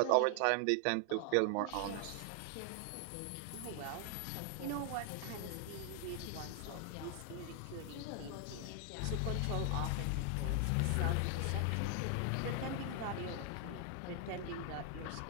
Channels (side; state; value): both; different; correlation 0.00